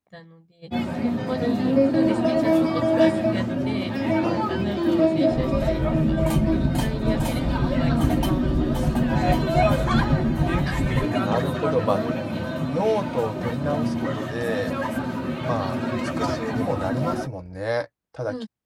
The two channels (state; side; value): identical; both; correlation 1.00